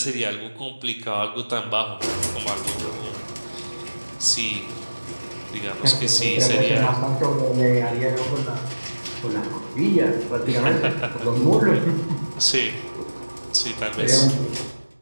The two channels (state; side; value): inverted; both; correlation -1.00